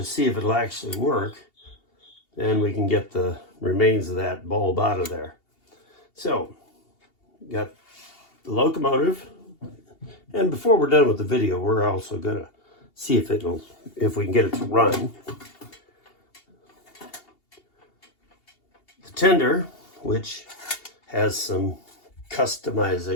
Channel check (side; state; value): right; late; 2.8 ms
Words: see if it'll actually work, then we can get the remains of that bulb out of there. So, got the locomotive, and before we're done with the video, we're also gonna see if we can get it to run. The tender, which has some